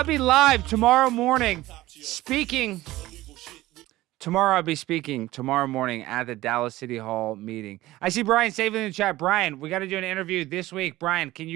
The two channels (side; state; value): left; quieter; 17.0 dB